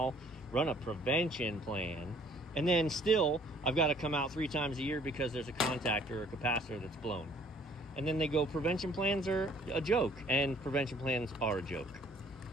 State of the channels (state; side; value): normal; both; correlation 0.58